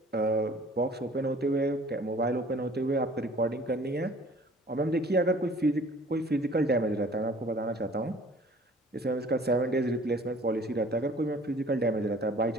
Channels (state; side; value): normal; both; correlation 0.52